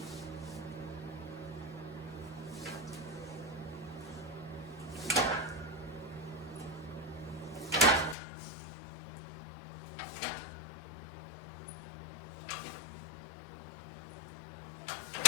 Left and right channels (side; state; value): right; drops out; at 8.2 s